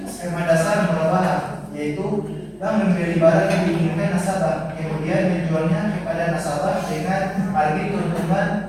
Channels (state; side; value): identical; both; correlation 1.00